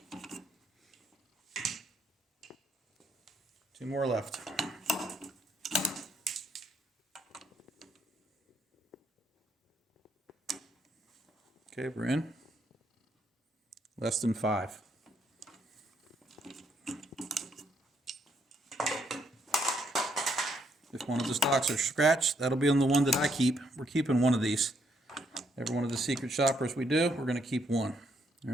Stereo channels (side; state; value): both; normal; correlation 0.73